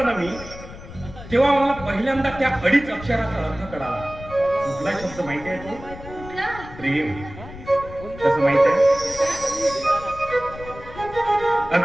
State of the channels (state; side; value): noise; left; rumble, 15 dB below the sound